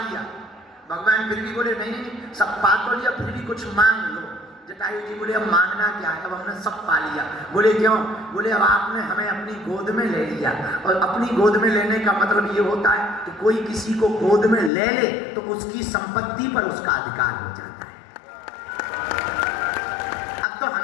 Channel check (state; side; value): drops out; right; at 14.7 s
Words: भगवान फिर भी बोले नहीं नहीं, सब पा तो लिया, फिर भी कुछ मांग लो। जटायु जी बोले अब मांगना क्या है, अब हमने सब पा लिया। बोले क्यों? बोले अब आपने हमें अपनी गोद में ले लिया, और अपनी गोद में लेने का मतलब ये होता है कि कोई किसी को गोद में ले ले तो उसकी संपत्ति पर उसका अधिकार हो जाता है। अब तो